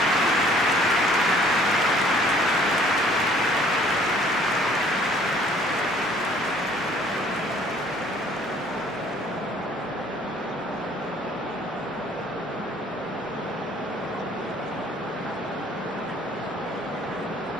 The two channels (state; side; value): normal; both; correlation 0.57